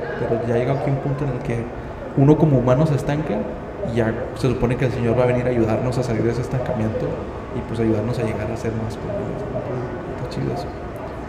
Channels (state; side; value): identical; both; correlation 1.00